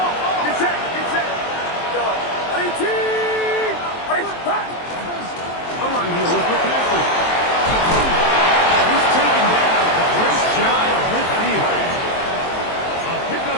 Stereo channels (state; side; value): late; right; 23 ms